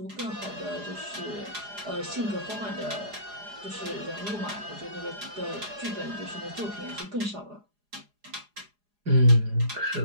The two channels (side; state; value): left; late; 4.8 ms